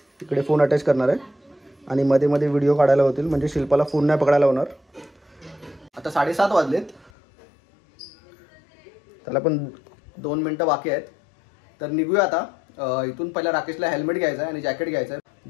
इकडे फोन अटॅच करणार आहे आणि मध्ये मध्ये व्हिडिओ काढायला होतील, म्हणजे शिल्पाला फोन नाही पकडायला होणार. आता 7:30 वाजलेत, त्याला पण 2 मिनटं बाकी आहेत. तर निघूया आता. इथून पहिला राकेशला हेल्मेट घ्यायचं आहे आणि जॅकेट घ्यायचं आहे.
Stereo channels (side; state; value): right; drops out; at 7.1 s